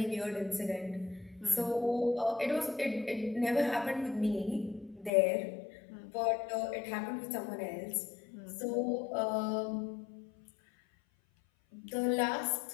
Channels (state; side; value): drops out; right; at 5.1 s